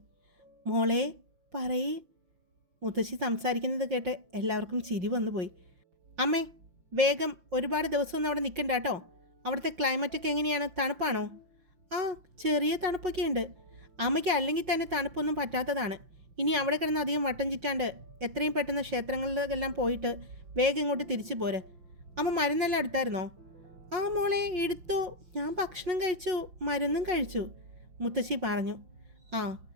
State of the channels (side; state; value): left; late; 5.8 ms